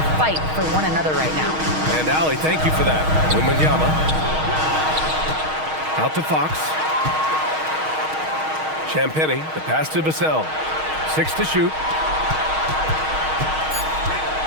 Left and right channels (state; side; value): late; left; 6.4 ms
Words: fight for one another right now." And Allie, thank you for that. Wembanyama. Out to Fox. Champagnie, the pass to Vassell. 6 to shoot.